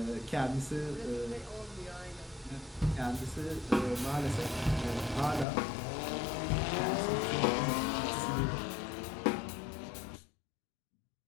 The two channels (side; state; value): right; drops out; at 5.5 s